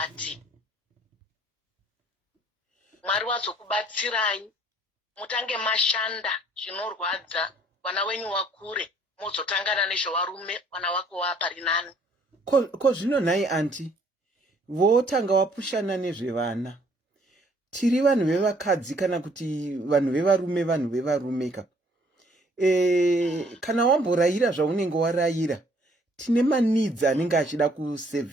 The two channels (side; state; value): both; normal; correlation 0.62